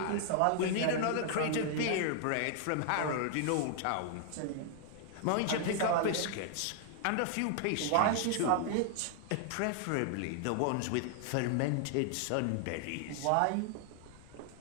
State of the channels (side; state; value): both; different; correlation 0.00